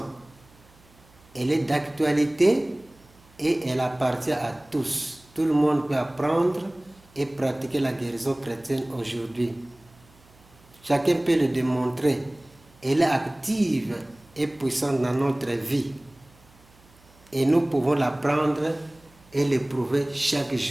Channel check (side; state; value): right; noise; hum, 28 dB below the sound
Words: Elle est d'actualité et elle appartient à tous. Tout le monde peut apprendre et pratiquer la guérison chrétienne aujourd'hui. Chacun peut le démontrer. Elle est active et puissante dans notre vie. Et nous pouvons l'apprendre et l'éprouver chaque